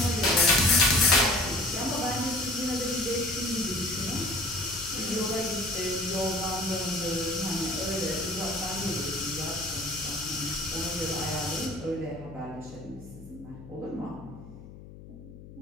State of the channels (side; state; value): left; noise; hum, 17 dB below the sound